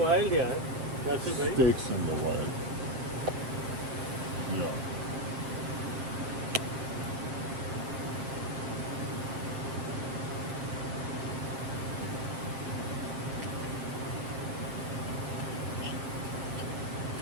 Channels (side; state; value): left; late; 7.5 ms